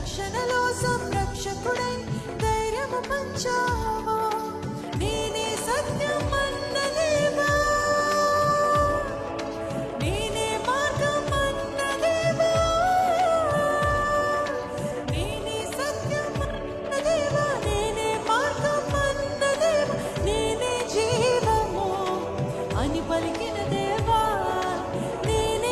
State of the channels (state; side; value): identical; both; correlation 1.00